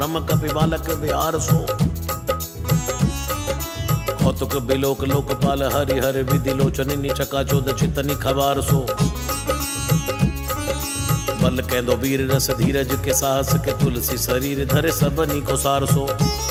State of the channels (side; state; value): both; identical; correlation 1.00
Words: कपि बालक बिहार सो। कौतुक बिलोक लोकपाल हरि हर विधि लोचनी चका चोद चितनी खबार सो। बल कैदो वीर रस धीरज के साहस के तुलसी शरीर धरे सबनी को सार सो।